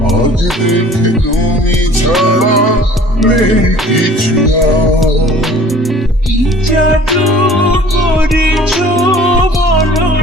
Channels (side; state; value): both; normal; correlation 0.49